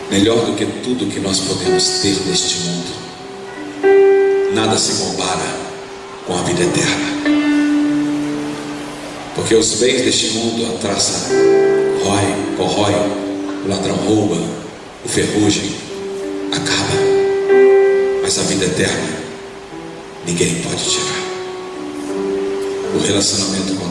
melhor do que tudo que nós podemos ter neste mundo, nada se compara com a vida eterna. Porque os bens deste mundo, a traça corrói, o ladrão rouba, o ferrugem acaba, mas a vida eterna ninguém pode tirar. O relacionamento com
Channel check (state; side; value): identical; both; correlation 1.00